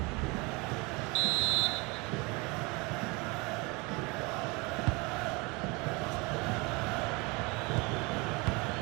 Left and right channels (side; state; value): left; quieter; 26.8 dB